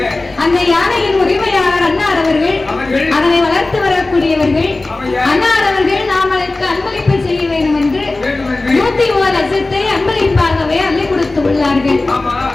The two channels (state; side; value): quieter; right; 3.1 dB